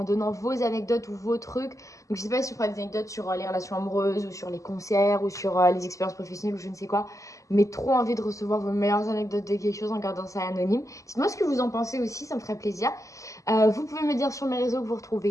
donnant vos anecdotes ou vos trucs. Donc je sais pas si je ferai des anecdotes sur les relations amoureuses ou sur les concerts ou sur les expériences professionnelles ou je ne sais quoi. Mais trop envie de recevoir vos meilleures anecdotes de quelque chose en gardant ça anonyme. Dites-moi ce que vous en pensez aussi, ça me ferait plaisir. Vous pouvez me dire sur mes réseaux que vous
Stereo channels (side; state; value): right; late; 0.16 ms